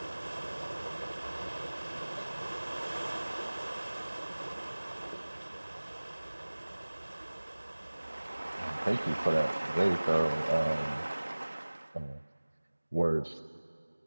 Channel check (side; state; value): both; inverted; correlation -1.00